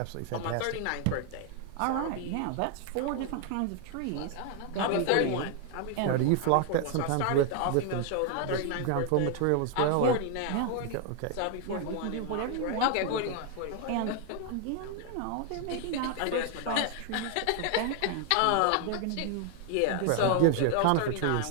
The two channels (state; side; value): different; both; correlation 0.00